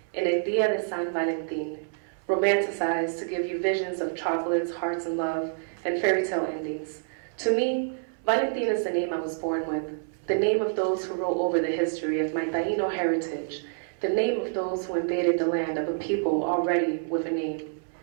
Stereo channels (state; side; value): silent; left; 60 dB below the other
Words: in El Día de San Valentín, romanticized to give you visions of chocolates, hearts, and love, and fairy tale endings. To me, Valentin is the name I was born with, the name of those who wrote over the history of my Taino heritage, the name of those who invaded the land of a people already with a name,